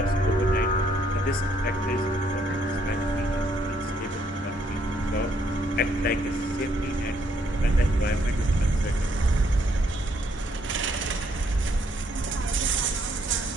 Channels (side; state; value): both; normal; correlation 0.70